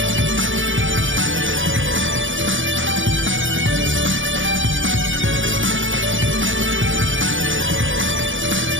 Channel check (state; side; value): late; left; 0.56 ms